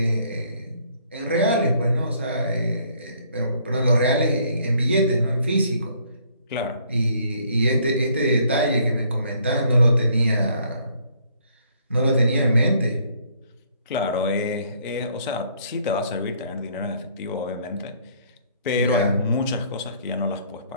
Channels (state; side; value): inverted; both; correlation -0.64